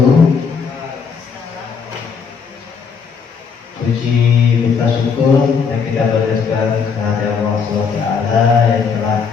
Puji kita syukur yang kita berdasarkan kehadiran Allah SWT yang telah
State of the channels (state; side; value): quieter; right; 5.9 dB